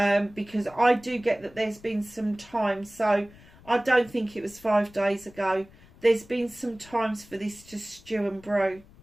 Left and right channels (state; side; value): noise; left; rumble, 24 dB below the sound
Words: Because I do get that there's been some time, so I don't think it was 5 days ago. There's been some times for this to stew and brew.